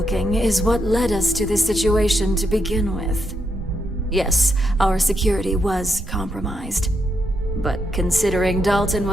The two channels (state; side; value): normal; both; correlation 0.80